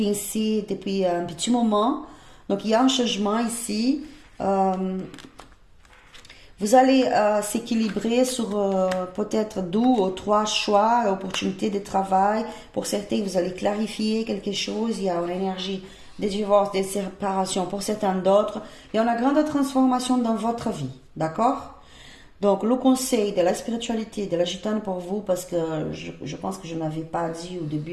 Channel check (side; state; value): both; identical; correlation 1.00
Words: depuis un petit moment. Donc, il y a un changement ici. Vous allez s'équilibrer sur peut-être 2 ou 3 choix, opportunités de travail. Pour certains, vous allez clarifier quelque chose. Il y a une énergie de divorce, de séparation. Pour certains d'autres, il y a une grande transformation dans votre vie. D'accord? Donc, le conseil de la spiritualité, de la gitane pour vous, parce que je pense que je n'avais pas dit au début